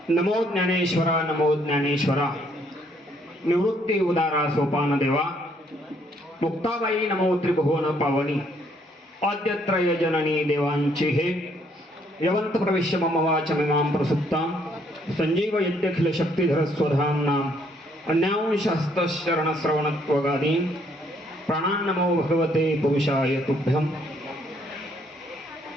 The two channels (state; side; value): normal; both; correlation 0.68